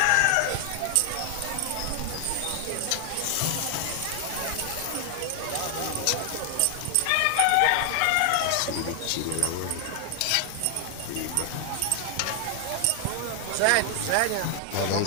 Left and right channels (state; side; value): different; both; correlation 0.00